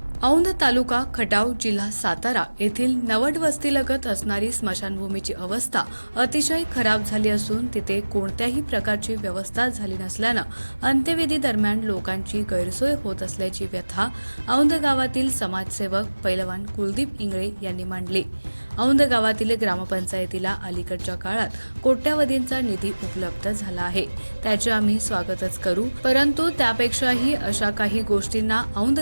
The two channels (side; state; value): both; inverted; correlation -1.00